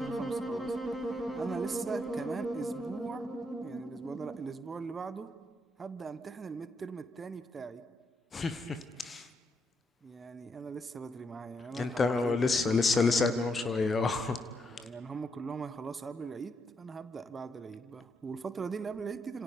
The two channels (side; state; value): both; normal; correlation 0.78